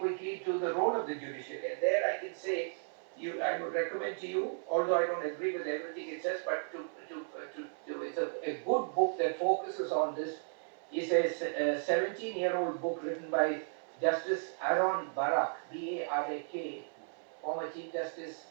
to the role of the judiciary, and there I can say, I would recommend to you, although I don't agree with everything it says, but it's a good book that focuses on this. It's a 17-year-old book written by Justice Aaron Barak, B-A-R-A-K, former Chief Justice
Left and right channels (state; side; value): silent; left; 55 dB below the other